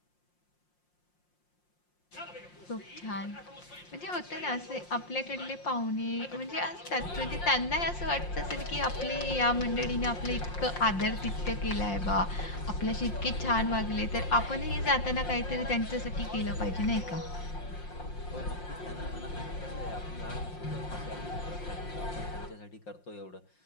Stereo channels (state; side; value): late; right; 5.6 ms